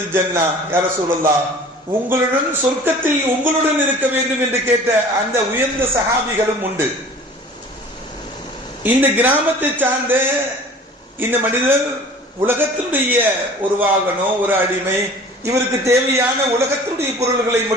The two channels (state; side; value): normal; both; correlation 0.45